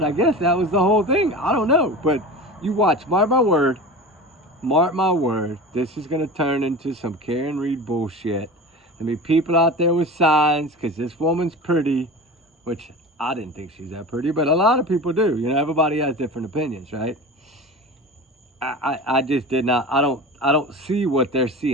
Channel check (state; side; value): normal; both; correlation 0.32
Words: I guess that was the whole thing. I don't know. But you watch, mark my word, this is going to turn into some Karen Reed bullshit. There'll be people out there with signs because this woman's pretty, which I didn't think she's that pretty, but a lot of people do. You know, everybody has different opinions, right? I just did not, I don't see what they're